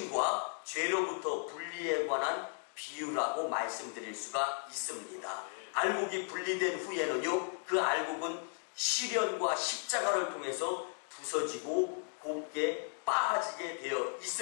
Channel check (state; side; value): silent; right; 54 dB below the other